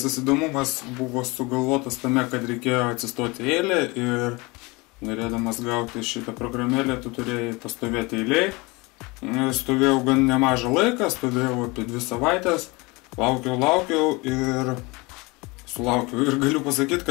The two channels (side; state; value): right; quieter; 25.3 dB